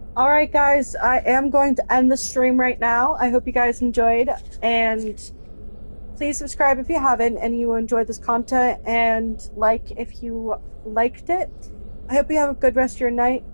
Alright guys, I am going to end the stream right now. I hope you guys enjoyed, and please subscribe if you haven't and you enjoyed this content, and like if you liked it. I hope you have a good rest of your night.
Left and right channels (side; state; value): both; inverted; correlation -1.00